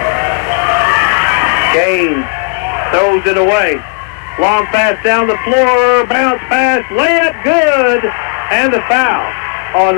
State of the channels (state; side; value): quieter; right; 34.1 dB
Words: Gaines throws it away. Long pass down the floor, bounce pass, layup good, and the foul on